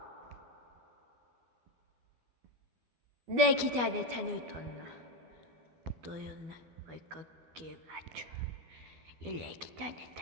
Leikitään, että nyt on. Toi on vaikka kevät. Ja leikitään, että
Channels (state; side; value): late; left; 12 ms